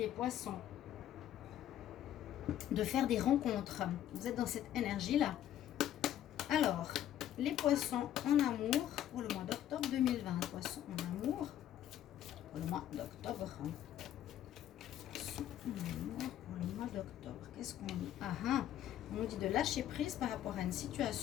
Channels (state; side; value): quieter; right; 11.5 dB